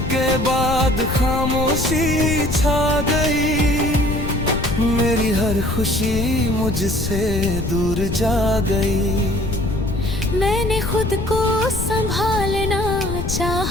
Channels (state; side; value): noise; left; rumble, 4 dB below the sound